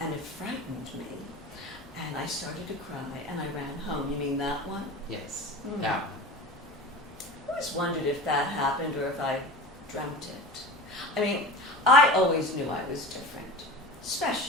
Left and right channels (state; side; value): normal; both; correlation 0.33